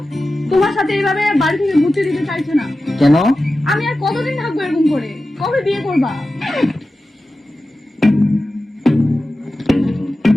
তোমার সাথে এইভাবে বাড়ি থেকে ঘুরতে দিতে চাইছে না। কেন? আমি আর কতদিন থাকবো এরকম করে? কবে বিয়ে করবা?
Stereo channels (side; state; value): both; normal; correlation 0.94